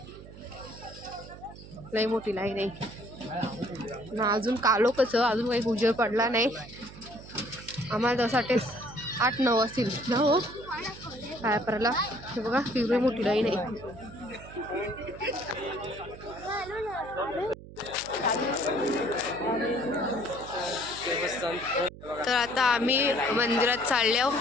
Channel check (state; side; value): noise; right; hum, 16 dB below the sound